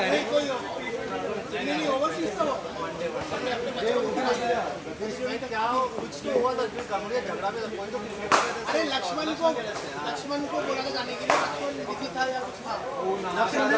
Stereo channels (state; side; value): identical; both; correlation 1.00